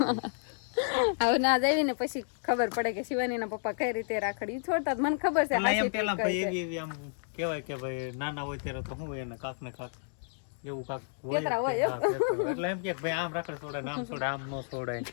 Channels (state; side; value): silent; right; digital silence